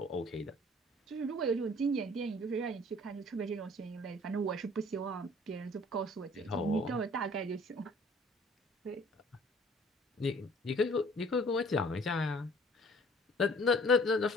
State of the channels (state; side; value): normal; both; correlation 0.54